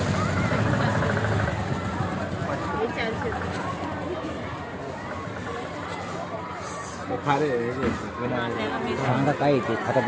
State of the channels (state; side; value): identical; both; correlation 1.00